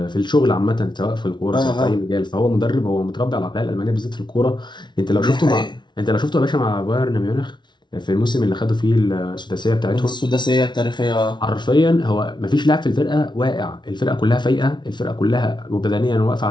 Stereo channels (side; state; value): right; late; 0.22 ms